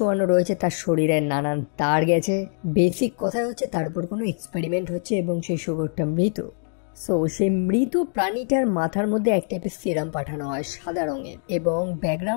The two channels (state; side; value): silent; right; 58 dB below the other